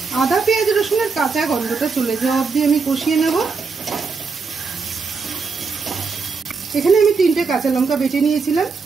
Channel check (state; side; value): quieter; left; 4.8 dB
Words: আদা পেঁয়াজ রসুনের কাঁচা গন্ধটা চলে যাওয়া অবধি আমি কষিয়ে নেব। এখানে আমি 3টে কাঁচা লঙ্কা বেটে নিয়েছিলাম,